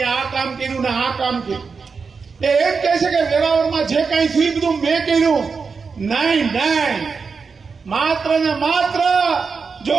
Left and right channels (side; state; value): left; quieter; 5.1 dB